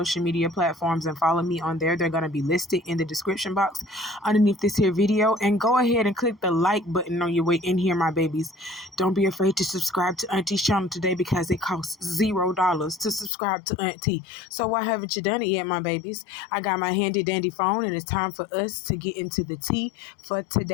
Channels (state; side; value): drops out; right; at 13.3 s